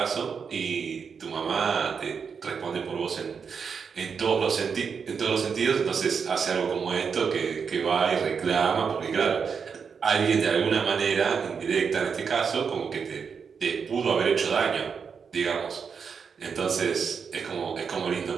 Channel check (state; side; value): quieter; left; 6.1 dB